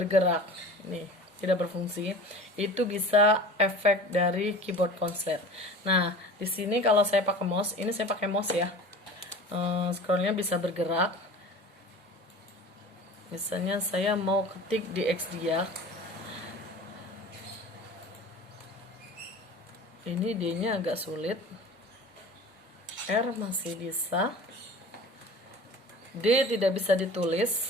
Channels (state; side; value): normal; both; correlation 0.39